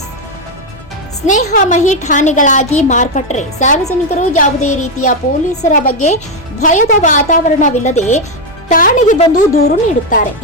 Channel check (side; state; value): both; normal; correlation 0.05